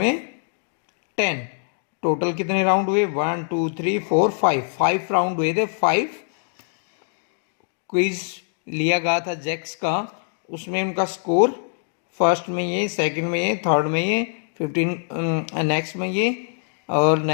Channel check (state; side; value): silent; right; digital silence